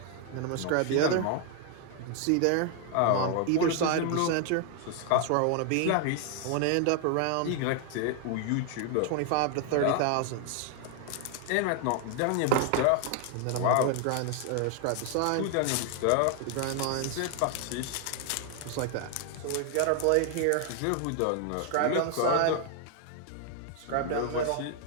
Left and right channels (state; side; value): different; both; correlation 0.00